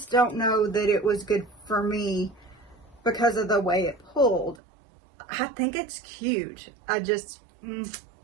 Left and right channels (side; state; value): left; drops out; at 4.6 s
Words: don't know that it was good for me because of the way it pulled. I think it's cute. I just,